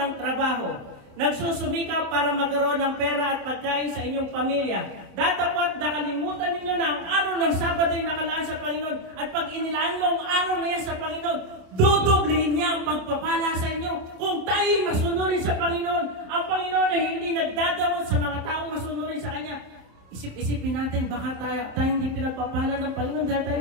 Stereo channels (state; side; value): late; left; 27 ms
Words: trabaho. Nagsusumikap para magkaroon ng pera at pagkain sa inyong pamilya. Datapot nakalimutan ninyo na ang araw ng Sabado ay nakalaan sa Panginoon. At pag inilaan mo ang araw na yan sa Panginoon, dudublihin niya ang pagpapala sa inyo. Kung tayo'y masunurin sa Panginoon, ang Panginoon ay hindi nagdadamot sa mga taong masunurin sa Kanya. Isip-isipin natin, baka tayo hindi pinagpapala ng Panginoon dahil tayo